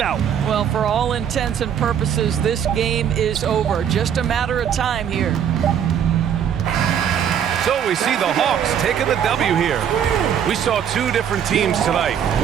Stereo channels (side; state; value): left; quieter; 8.7 dB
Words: out. Well, for all intents and purposes, this game is over. Just a matter of time here. So we see the Hawks taking the W here. We saw two different teams tonight.